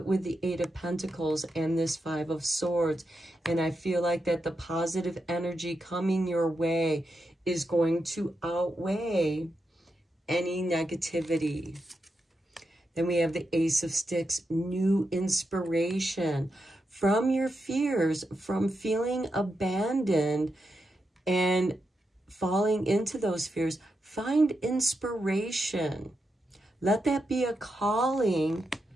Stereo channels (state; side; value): normal; both; correlation 0.86